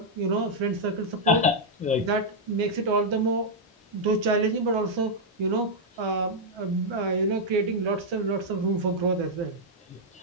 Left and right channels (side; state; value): both; normal; correlation -0.04